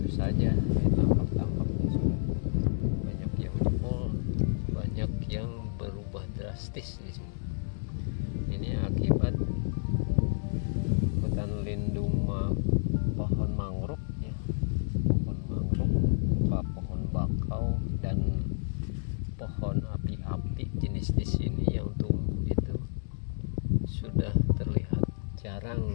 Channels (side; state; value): right; silent; digital silence